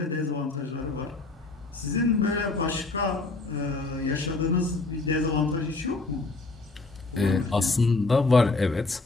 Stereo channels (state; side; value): quieter; right; 3.4 dB